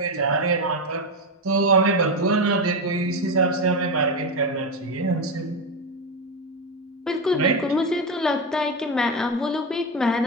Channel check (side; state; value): both; normal; correlation 0.13